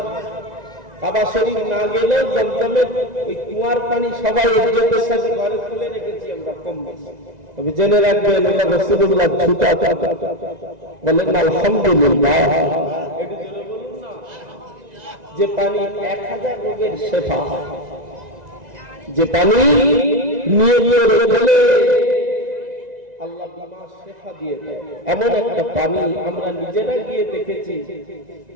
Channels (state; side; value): late; left; 1.9 ms